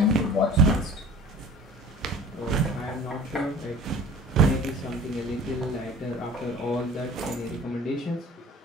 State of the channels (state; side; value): normal; both; correlation 0.45